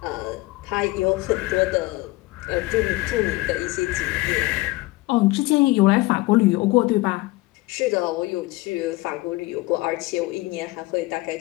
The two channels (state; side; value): quieter; right; 20.7 dB